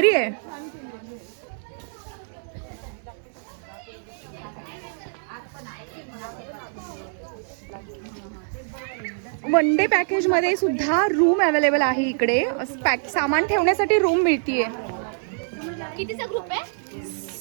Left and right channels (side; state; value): left; silent; digital silence